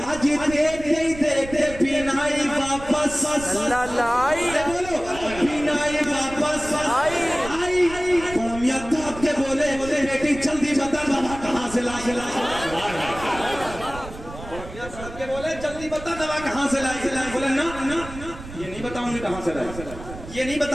آج دیکھتے ہی دیکھتے بینائی واپس لائی, بولو بینائی واپس آئی. میاں تھاپ کے بولے بیٹی جلدی بتا دوا کہاں سے لائی. کے بولے جلدی بتا دوا کہاں سے لائی. بولے نا یہ نہیں بتاؤں گی کہاں سے لائی, یہ نہیں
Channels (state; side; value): noise; right; rumble, 13 dB below the sound